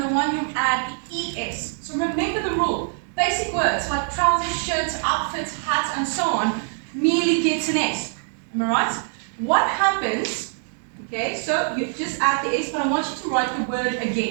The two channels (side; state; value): left; silent; digital silence